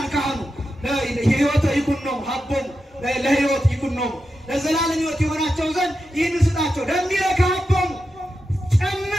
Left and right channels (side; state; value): both; normal; correlation 0.89